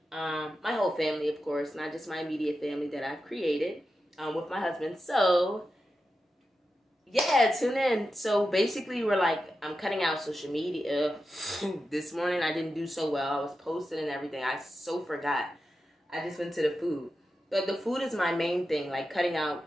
My whole family, of course, not just my immediate family that I've created with my husband. So, yeah, tune in. So basically, I'm cutting out social media. This morning, I didn't do so well. I was posting and everything. I so forgot. I just went to the food. But the food is my main thing, like cutting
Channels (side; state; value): both; normal; correlation 0.90